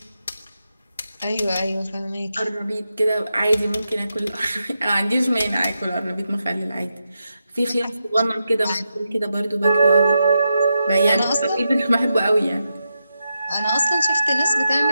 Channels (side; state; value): both; inverted; correlation -0.87